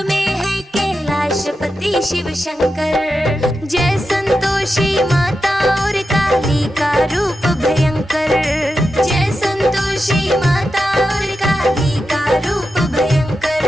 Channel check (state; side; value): normal; both; correlation 0.89